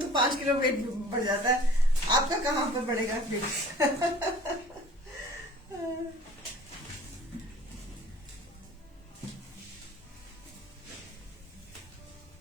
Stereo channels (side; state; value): both; normal; correlation 0.47